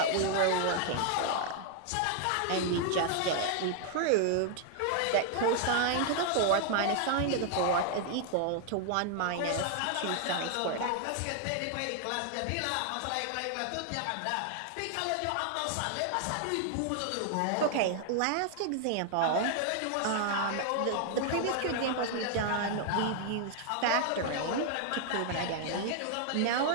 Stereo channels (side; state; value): both; different; correlation 0.00